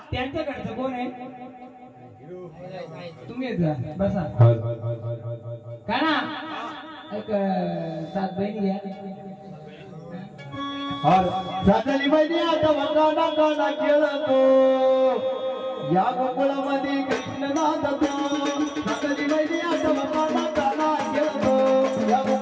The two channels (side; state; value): both; identical; correlation 1.00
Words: त्यांच्याकडचं कोण आहे. तुम्ही बसा का ना. एक 7 बहिणी घ्या. सातली बहिणी आता वकाना काना खेळतो या गोकुळामध्ये कृष्ण नाचतो. सातली बहिणी आता वकाना काना खेळतो या